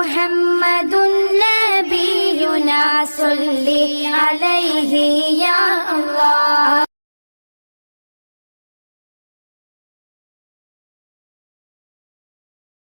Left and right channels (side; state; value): both; inverted; correlation -1.00